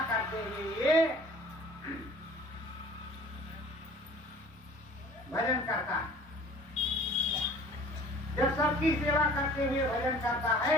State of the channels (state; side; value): normal; both; correlation 0.48